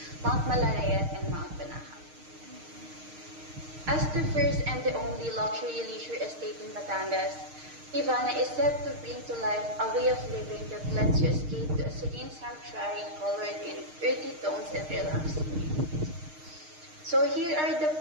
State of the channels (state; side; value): late; left; 6.5 ms